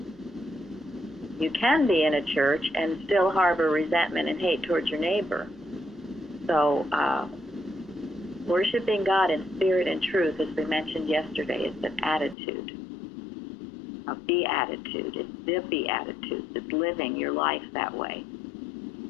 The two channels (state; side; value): drops out; right; at 12.4 s